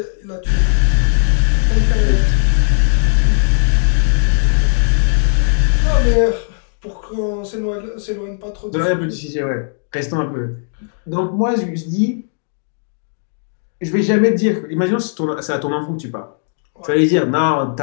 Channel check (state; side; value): silent; right; digital silence